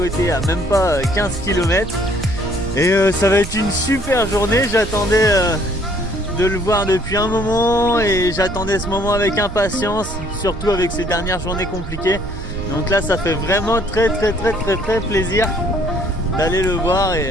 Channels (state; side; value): noise; right; rumble, 9 dB below the sound